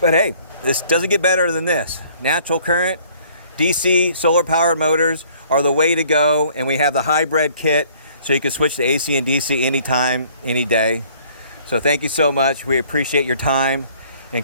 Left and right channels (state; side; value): inverted; both; correlation -0.58